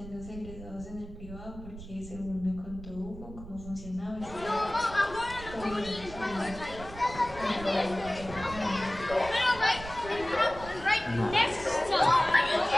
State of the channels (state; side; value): noise; right; rumble, 14 dB below the sound